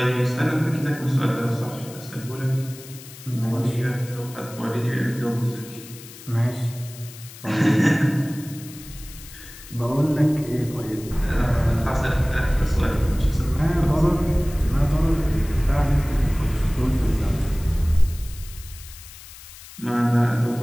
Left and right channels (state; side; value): noise; left; hiss, 17 dB below the sound